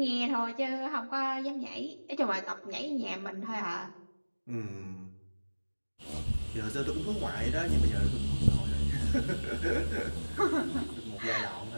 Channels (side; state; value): both; inverted; correlation -1.00